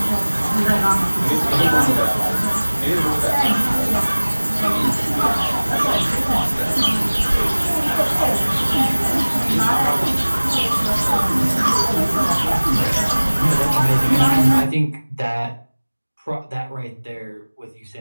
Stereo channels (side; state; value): both; inverted; correlation -1.00